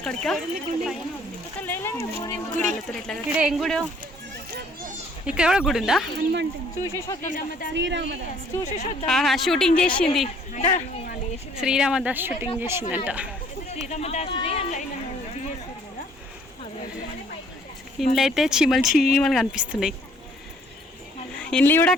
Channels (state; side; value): normal; both; correlation 0.59